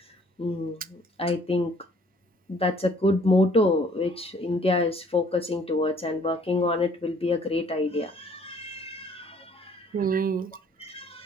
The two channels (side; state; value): both; normal; correlation 0.59